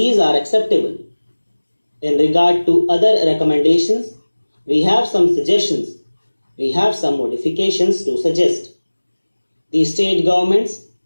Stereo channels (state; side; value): inverted; both; correlation -1.00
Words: are acceptable. In regard to other recommendations, we have some suggestions. We have some modifications to suggest. The state governments